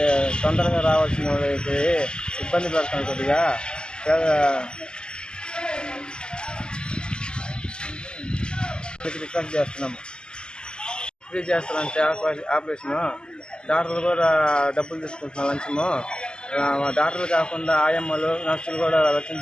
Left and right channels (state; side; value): late; right; 0.047 ms